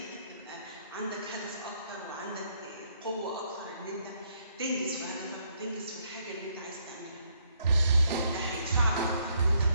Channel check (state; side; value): inverted; both; correlation -0.71